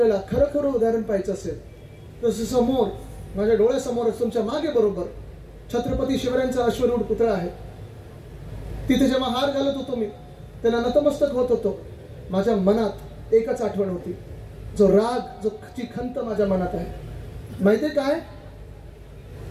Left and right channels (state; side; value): identical; both; correlation 1.00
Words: खरं खरं उदाहरण पाहायचं असेल तर समोर माझ्या डोळ्यासमोरच तुमच्या मागे बरोबर छत्रपती शिवरायांचा अश्वरूढ पुतळा आहे. तिथे जेव्हा हार घालत होतो मी, त्याला नतमस्तक होत होतो, माझ्या मनात एकच आठवण होती, जो राग, जो ची खंत माझ्या मनात आहे. माहितीये काय?